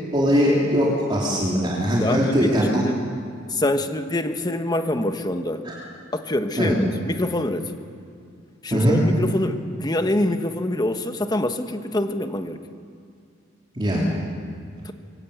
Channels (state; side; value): normal; both; correlation 0.73